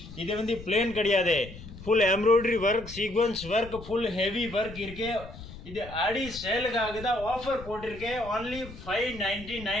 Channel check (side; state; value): left; noise; rumble, 15 dB below the sound